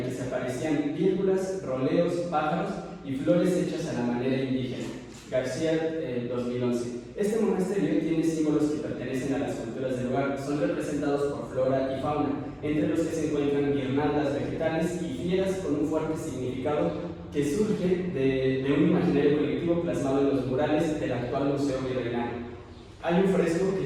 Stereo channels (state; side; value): identical; both; correlation 1.00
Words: que se aparecían vírgulas, roleos, pájaros y flores hechas a la manera indígena. García, 2011. Este monasterio tiene símbolos que pertenecen a las culturas del lugar, son representados por flora y fauna, entre los que se encuentran guirnaldas vegetales y fieras con un fuerte significado que surge de un imaginario colectivo plasmado en los murales del actual Museo Virreinal. Hay un fresco